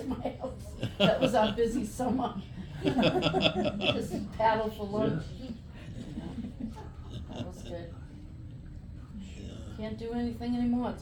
my house. That was our busy summer. Just paddle for lunch. That was good. Can't do anything anymore, it's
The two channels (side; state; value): both; identical; correlation 1.00